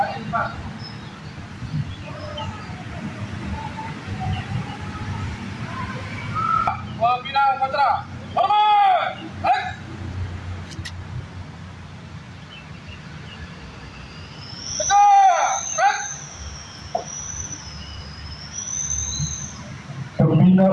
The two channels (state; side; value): identical; both; correlation 1.00